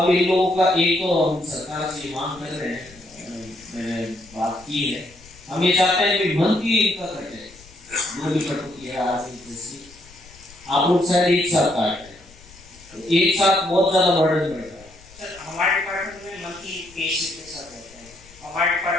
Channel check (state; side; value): noise; left; rumble, 24 dB below the sound